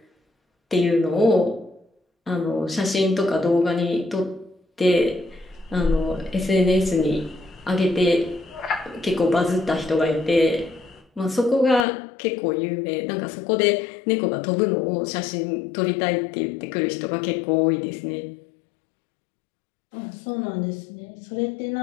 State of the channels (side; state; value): right; drops out; at 11.9 s